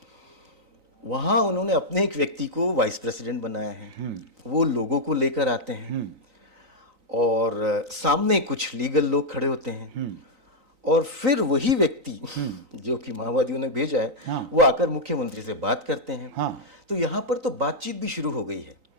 वहाँ उन्होंने अपने एक व्यक्ति को वाइस प्रेसिडेंट बनाया है। वो लोगों को लेकर आते हैं और सामने कुछ लीगल लोग खड़े होते हैं और फिर वही व्यक्ति जो कि माओवादियों ने भेजा है वो आकर मुख्यमंत्री से बात करते हैं। तो यहाँ पर तो बातचीत भी शुरू हो गई है।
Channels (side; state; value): left; late; 3.9 ms